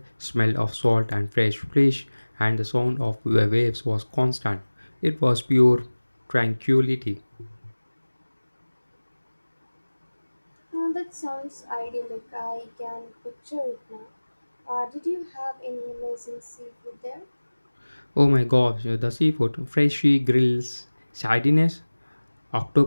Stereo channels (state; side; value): inverted; both; correlation -1.00